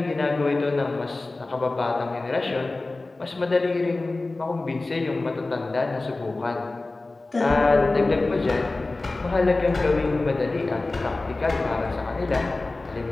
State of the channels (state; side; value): quieter; right; 3.2 dB